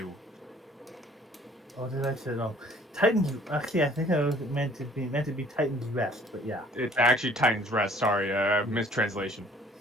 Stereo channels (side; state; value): both; normal; correlation 0.55